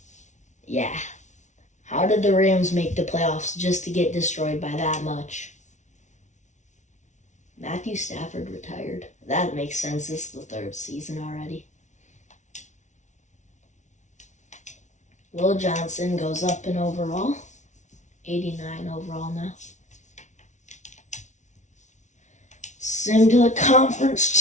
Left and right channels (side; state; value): right; late; 0.35 ms